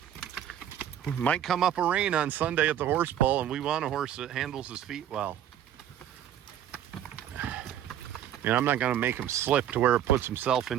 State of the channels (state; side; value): quieter; left; 10.5 dB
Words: might come up a rain on Sunday at the horse pull, and we want a horse that handles his feet well. You know, I'm not going to make him slip to where it puts himself